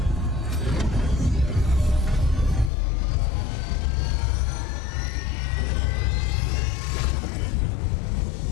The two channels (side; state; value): right; drops out; at 2.7 s